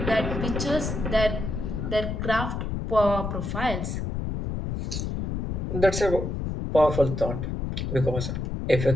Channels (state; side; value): noise; left; rumble, 3 dB below the sound